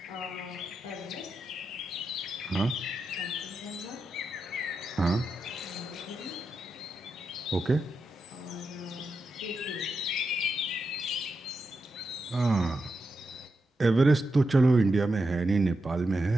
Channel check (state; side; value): normal; both; correlation 0.87